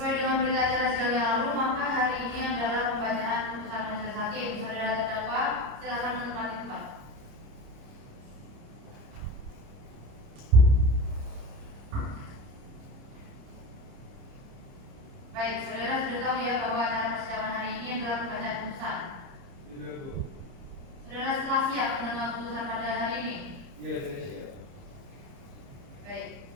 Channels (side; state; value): left; late; 30 ms